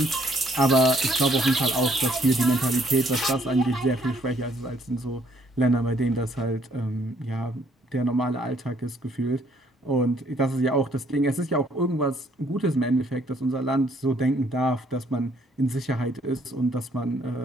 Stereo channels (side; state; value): both; normal; correlation 0.66